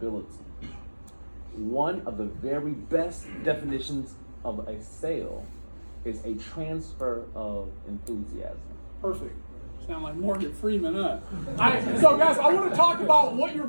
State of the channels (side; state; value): both; inverted; correlation -1.00